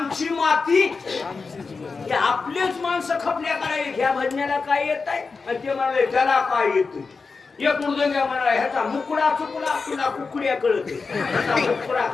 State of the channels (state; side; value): quieter; right; 4.5 dB